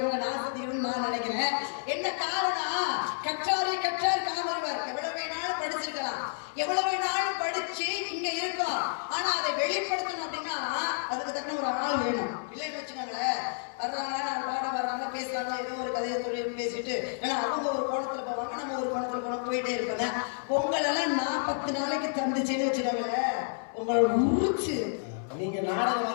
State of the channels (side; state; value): right; silent; 58 dB below the other